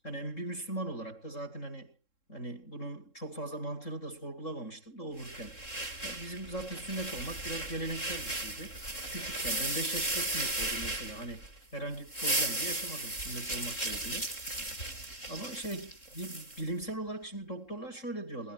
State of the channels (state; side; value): late; right; 3.7 ms